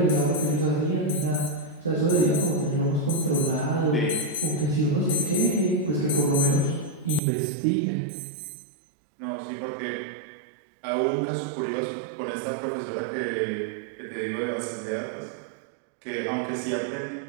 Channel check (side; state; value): left; drops out; at 7.2 s